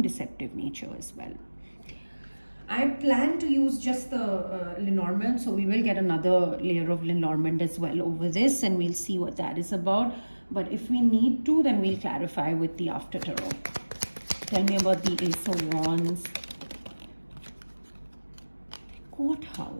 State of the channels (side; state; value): both; inverted; correlation -1.00